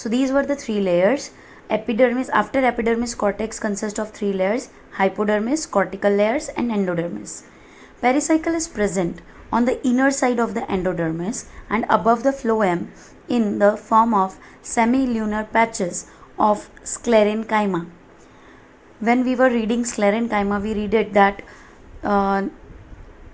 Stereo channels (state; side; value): identical; both; correlation 1.00